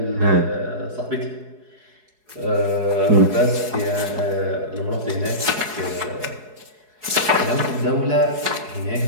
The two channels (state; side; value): late; left; 4.7 ms